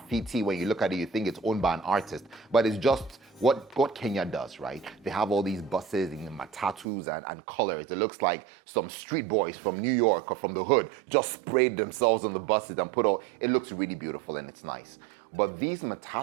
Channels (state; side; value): drops out; left; at 6.9 s